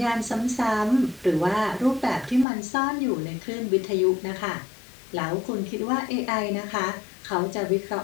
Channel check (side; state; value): right; drops out; at 2.5 s